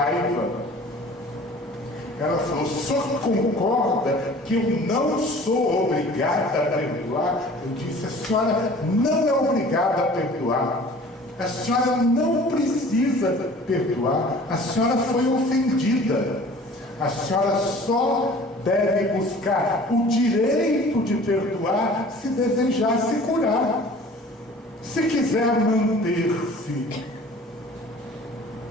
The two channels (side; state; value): both; normal; correlation 0.47